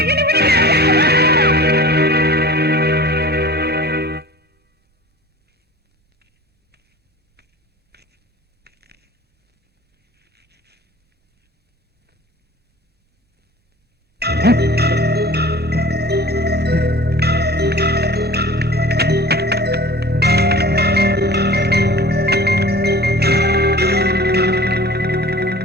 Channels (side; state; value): both; normal; correlation 0.42